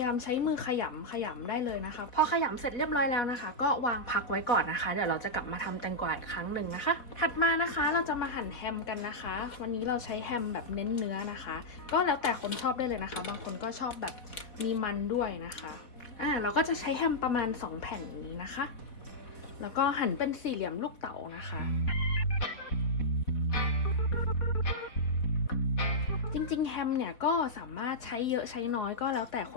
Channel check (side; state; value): right; late; 4.1 ms